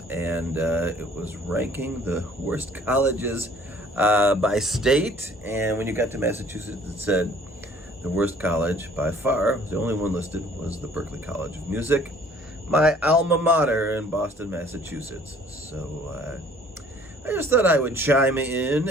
and it was ranking the worst colleges by state. And when you got to Massachusetts, it said the worst college by far, the only one listed, was the Berklee College of Music, my alma mater in Boston, Massachusetts. So I just thought I would chime in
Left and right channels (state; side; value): normal; both; correlation 0.55